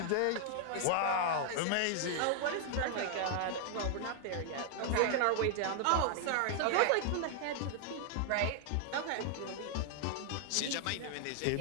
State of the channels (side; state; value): both; different; correlation 0.00